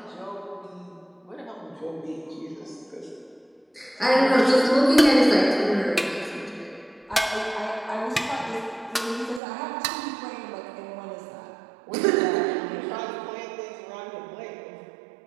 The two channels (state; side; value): drops out; left; at 9.4 s